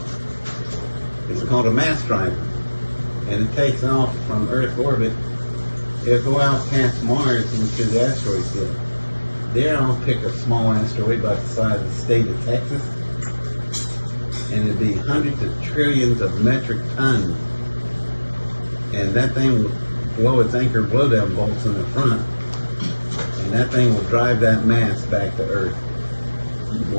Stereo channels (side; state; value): both; inverted; correlation -1.00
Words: it's called a mass driver, and it takes off from Earth orbit. It'll go out past Mars into the asteroid field. There I'll pick a small asteroid about the size of the state of Texas, and it'd be hundreds of trillions of metric tons. And that thing will blow its anchor blowdown bolts in the front, and that thing will drive that mass back to Earth.